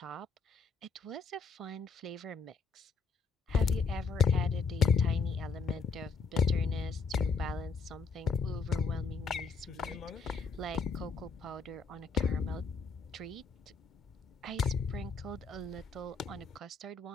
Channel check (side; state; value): right; quieter; 4.7 dB